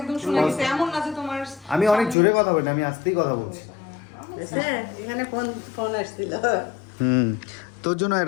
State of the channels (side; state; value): right; drops out; at 2.1 s